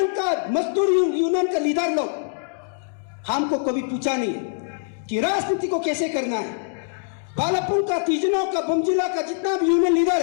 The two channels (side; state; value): right; silent; digital silence